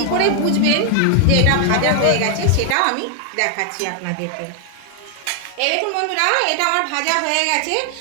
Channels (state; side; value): different; both; correlation 0.00